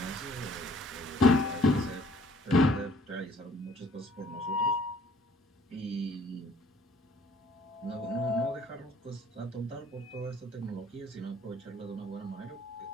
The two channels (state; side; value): normal; both; correlation 0.57